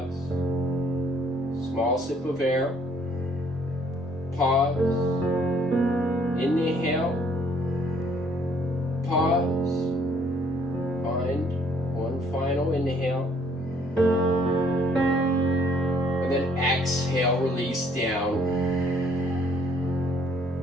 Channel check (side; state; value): both; normal; correlation 0.63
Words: Small sip of air. Pause. pause. Find one final inhale. And then exhale, release down.